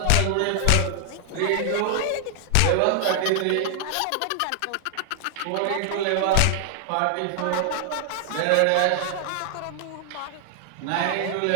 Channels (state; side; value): different; both; correlation 0.00